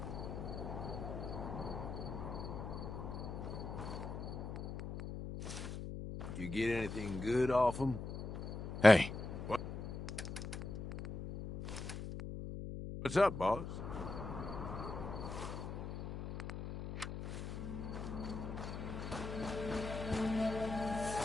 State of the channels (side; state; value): left; noise; hum, 6 dB below the sound